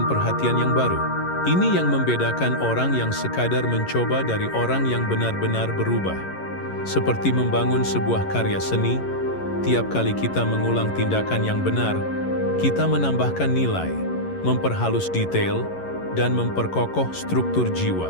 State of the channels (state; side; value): late; right; 11 ms